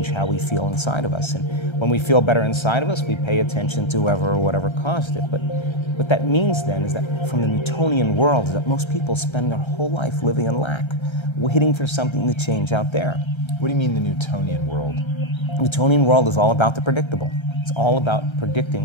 how we feel inside of us. And when we feel better inside of us, we pay attention to whoever or whatever caused it. But what that means then is that from the Newtonian world is that most people spend their whole life living in lack, waiting for something to change out there. What do you mean the Newtonian world? The Newtonian world is all about the predictable. It's all about predicting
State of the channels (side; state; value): right; late; 1.3 ms